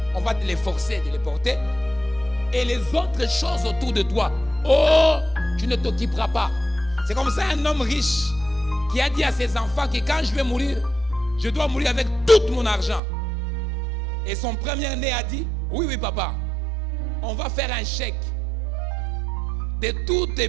on va te les forcer de les porter. Et les autres choses autour de toi, oh, tu ne t'occuperas pas. C'est comme ça un homme riche qui a dit à ses enfants que quand je vais mourir, je dois mourir avec tout mon argent. Et son premier-né a dit, oui, oui, papa, on va faire un chèque de tous tes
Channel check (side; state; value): left; drops out; at 13.0 s